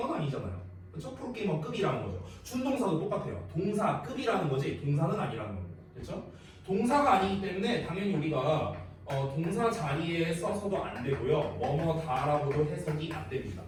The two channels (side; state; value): both; identical; correlation 1.00